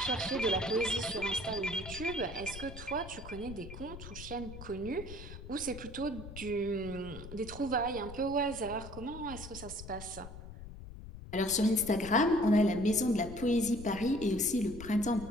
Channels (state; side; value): noise; left; rumble, 13 dB below the sound